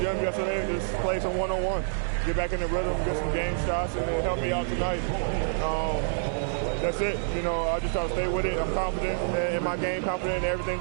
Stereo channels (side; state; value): left; silent; digital silence